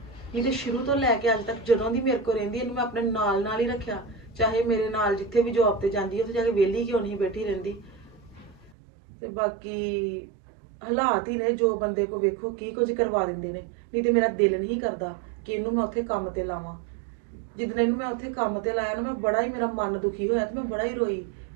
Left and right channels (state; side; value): drops out; left; at 8.7 s